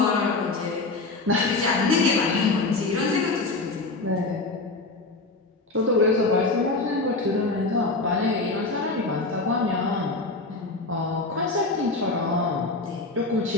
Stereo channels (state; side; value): quieter; right; 3.4 dB